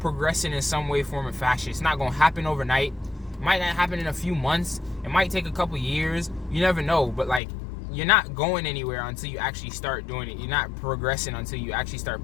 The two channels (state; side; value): drops out; right; at 7.4 s